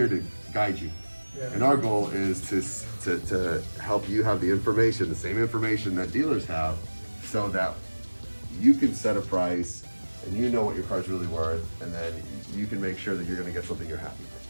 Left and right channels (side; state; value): both; inverted; correlation -1.00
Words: to guide you. Yeah. And our goal is to help you have the information, the same information that dealers have, so that you can set a price and you know what your car's really worth, and then you can make sure that you're gonna get something you're happy